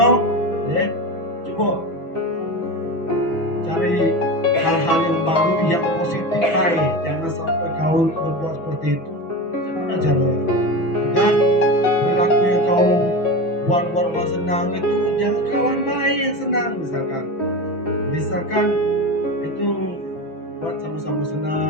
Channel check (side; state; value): right; late; 6.0 ms